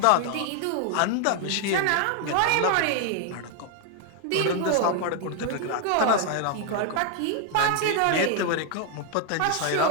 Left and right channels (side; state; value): both; different; correlation 0.01